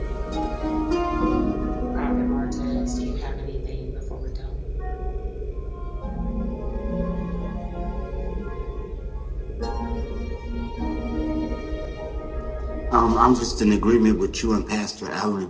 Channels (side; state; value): both; identical; correlation 1.00